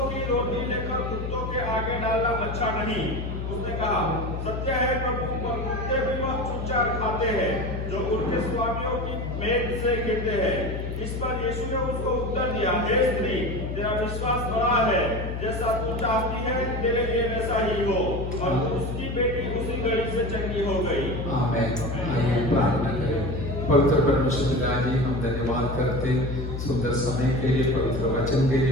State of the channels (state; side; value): noise; left; hum, 5 dB below the sound